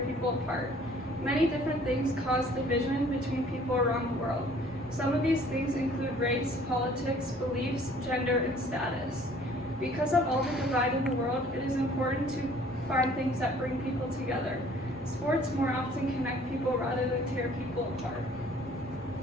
apart? Many different things cause division between people around the world. Some of these things include race, politics, beliefs, gender, and status. Because of all the divide in the world, it is important to find things that bring people together. Sports more often connect people rather than tear people apart.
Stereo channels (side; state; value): both; normal; correlation 0.55